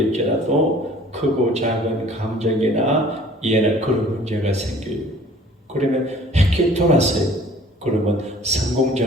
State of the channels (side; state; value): both; normal; correlation 0.51